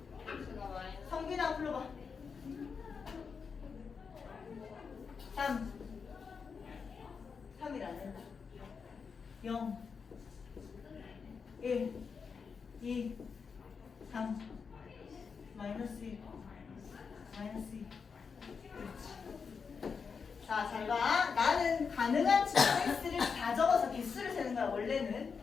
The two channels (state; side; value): quieter; right; 5.7 dB